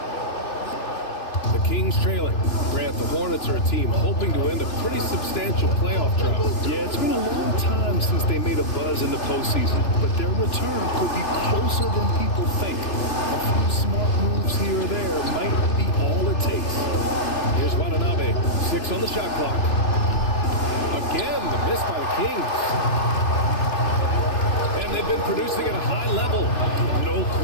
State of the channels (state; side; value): late; right; 2.9 ms